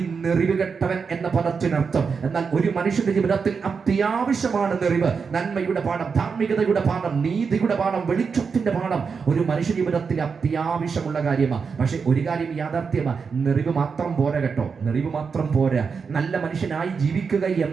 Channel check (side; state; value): left; quieter; 5.6 dB